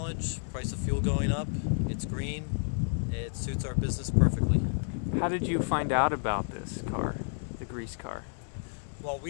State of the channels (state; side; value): silent; right; digital silence